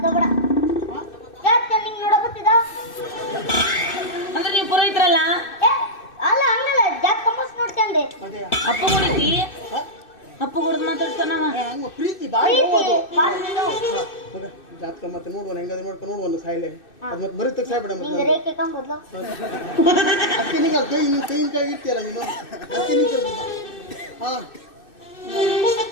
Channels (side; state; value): right; late; 2.6 ms